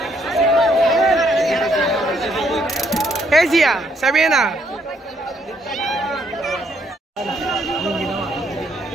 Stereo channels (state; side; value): normal; both; correlation 0.71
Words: Hey Zia, Sabina.